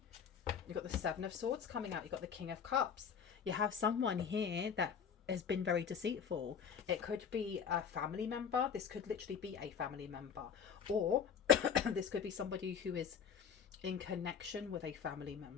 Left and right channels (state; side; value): quieter; right; 7.3 dB